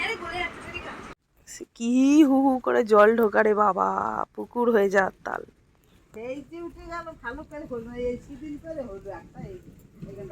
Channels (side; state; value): both; identical; correlation 1.00